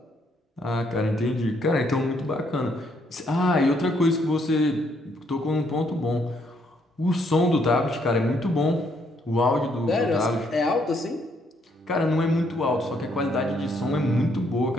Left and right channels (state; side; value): normal; both; correlation 0.71